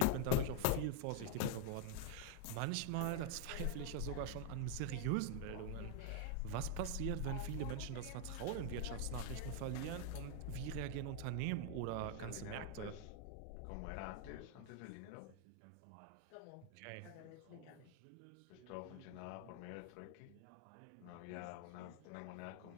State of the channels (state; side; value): different; both; correlation 0.00